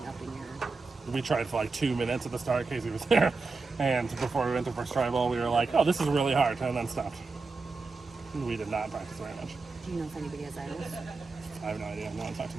up in your. we tried for like 2 minutes at the start. Casey was there, and before we went to first tribal, we were like, "Oh, this is really hard," and then stopped. We did not practice very much. Do you know if anybody has idols? I have no idea. No one's talked to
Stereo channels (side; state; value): left; quieter; 4.1 dB